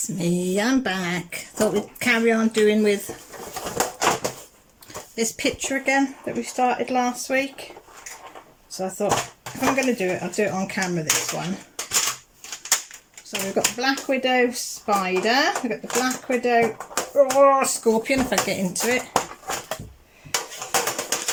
me, I'm back. Thought we'd carry on doing with this picture again that we started last week. So I thought if I'm going to do it, I'll do it on camera this one. So we've got the Black Widow spider, we've got the Black Widow scorpion if I get into it.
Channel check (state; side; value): identical; both; correlation 1.00